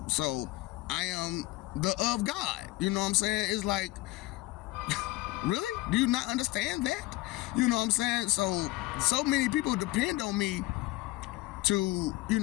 so I am the of God. You know what I'm saying? It's like, really? Do you not understand that? You know what I'm saying? So many people depend on me to,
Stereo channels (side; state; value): right; quieter; 19.1 dB